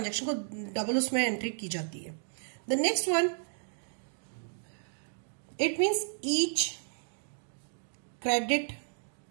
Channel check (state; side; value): silent; left; digital silence